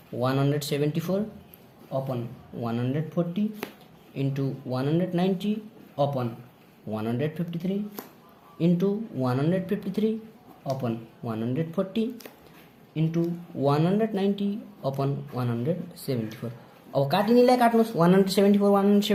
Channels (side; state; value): both; identical; correlation 1.00